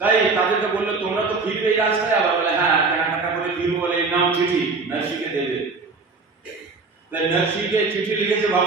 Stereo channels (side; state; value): left; quieter; 4.1 dB